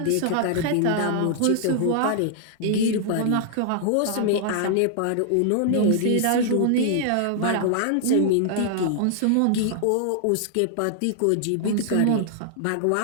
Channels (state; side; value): different; both; correlation -0.01